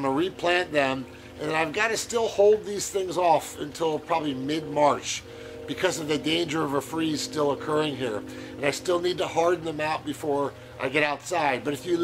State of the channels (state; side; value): identical; both; correlation 1.00